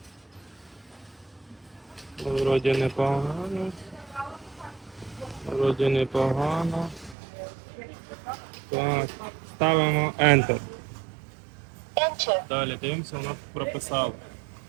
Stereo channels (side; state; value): left; drops out; at 7.2 s